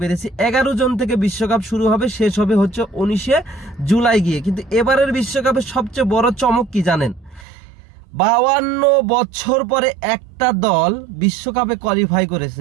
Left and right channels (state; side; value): drops out; left; at 7.5 s